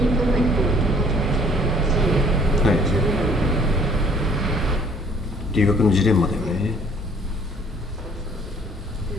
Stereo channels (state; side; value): normal; both; correlation 0.58